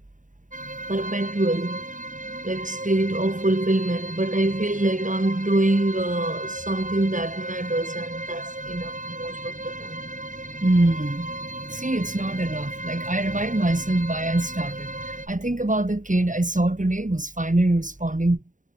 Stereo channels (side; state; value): left; late; 0.37 ms